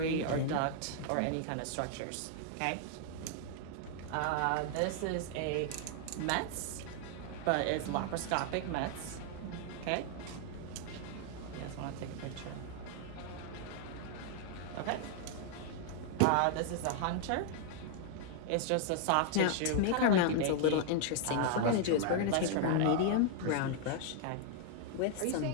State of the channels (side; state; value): both; different; correlation 0.00